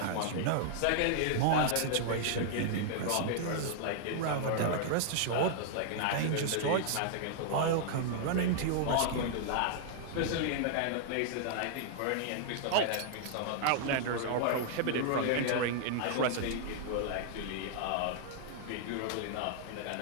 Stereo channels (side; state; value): both; different; correlation -0.01